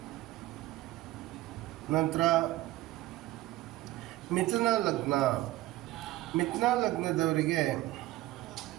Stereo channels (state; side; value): quieter; left; 16.9 dB